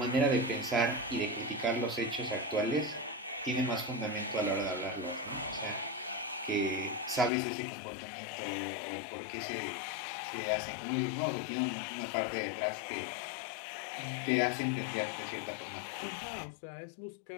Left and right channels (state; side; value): drops out; right; at 7.3 s